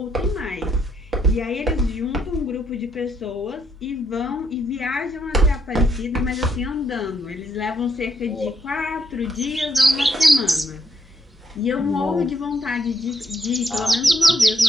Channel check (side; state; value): both; normal; correlation 0.75